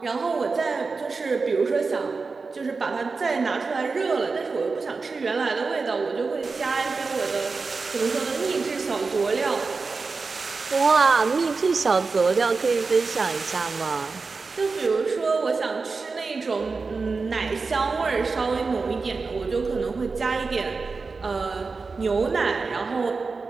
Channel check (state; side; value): quieter; left; 4.3 dB